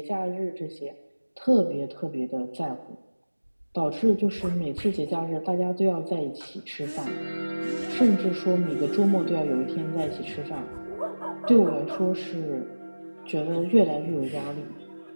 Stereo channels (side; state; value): both; inverted; correlation -1.00